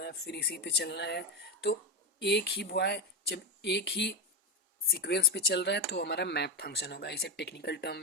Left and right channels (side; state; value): both; normal; correlation 0.13